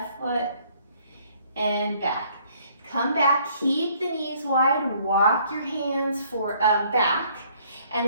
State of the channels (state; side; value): inverted; both; correlation -0.62